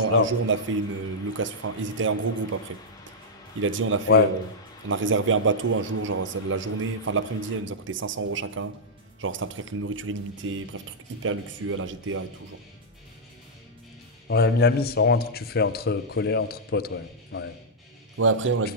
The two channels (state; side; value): normal; both; correlation -0.08